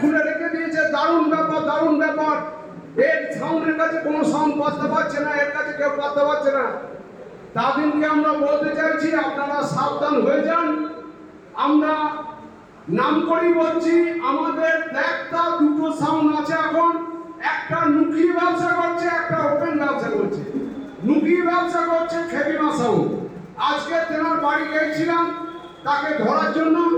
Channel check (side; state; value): both; identical; correlation 1.00